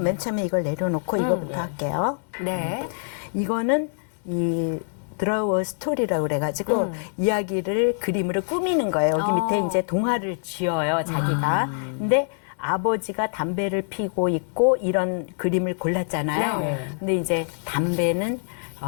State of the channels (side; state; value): right; silent; digital silence